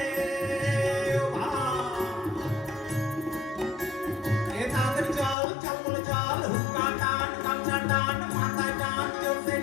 এ তাড়াতাড়ি চল চল বলে চল হুক্কা টান গামছা টান মাথা টান জোরসে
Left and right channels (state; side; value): drops out; right; at 5.4 s